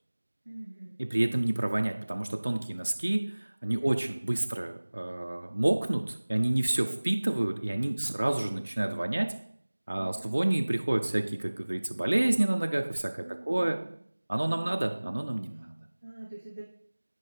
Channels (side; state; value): both; inverted; correlation -1.00